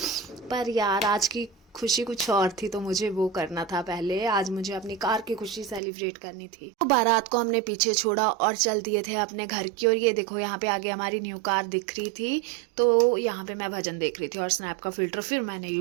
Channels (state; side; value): drops out; left; at 5.8 s